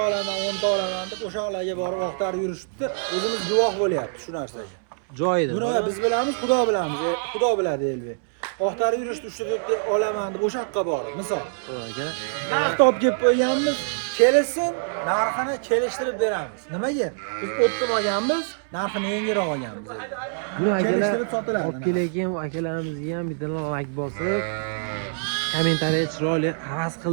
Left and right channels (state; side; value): silent; left; 62 dB below the other